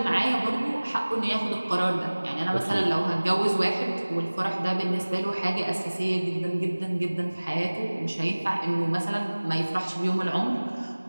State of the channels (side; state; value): both; inverted; correlation -1.00